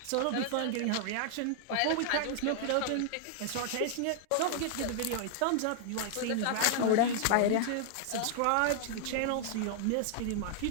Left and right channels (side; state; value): both; different; correlation -0.01